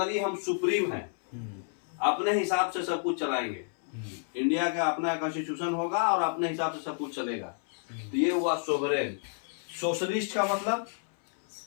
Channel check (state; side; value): silent; right; 58 dB below the other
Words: हम सुप्रीम हैं, अपने हिसाब से सब कुछ चलाएंगे। इंडिया का अपना कॉन्स्टिट्यूशन होगा और अपने हिसाब से सब कुछ चलेगा। तो ये हुआ सोवरेन। सोशलिस्ट का मतलब